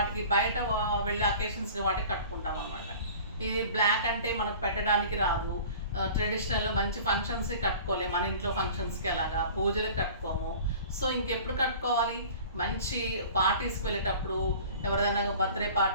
బయట వెళ్ళే అకేషన్స్కి వాటికి కట్టుకుంటాం అనమాట. ఇది బ్లాక్ అంటే మనకు పెట్టడానికి రాదు. ట్రెడిషనల్ మంచి ఫంక్షన్స్కి కట్టుకోలేము. మన ఇంట్లో ఫంక్షన్స్కి అలాగా పూజలకు కట్టుకోము. సో ఇంకెప్పుడు కట్టుకోవాలి? మంచి పార్టీస్కి వెళ్ళేటప్పుడు, ఎవరిదైనా బర్త్డే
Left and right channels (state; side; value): inverted; both; correlation -0.43